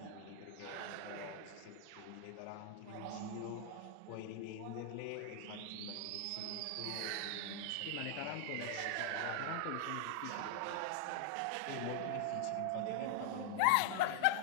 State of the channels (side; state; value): both; different; correlation 0.00